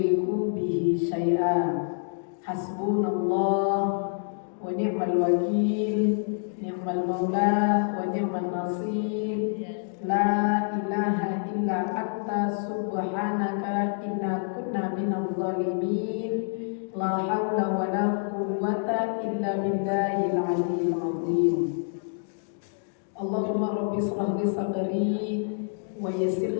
bihi syai'a. Hasbunallah wa ni'mal wakil, ni'mal ni'mal maula wa ni'mal nasir. La ilaha illa anta subhanaka inna kunna minadh dhalimin. La haula wa la quwwata illa billahil aliyyil azim. Allahumma rabbi shrah li sadri wa yassir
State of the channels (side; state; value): right; silent; digital silence